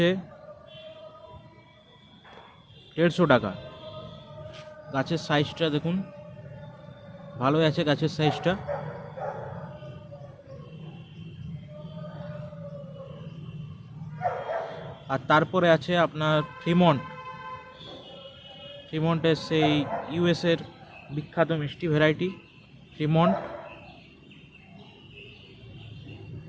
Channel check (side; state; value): both; identical; correlation 1.00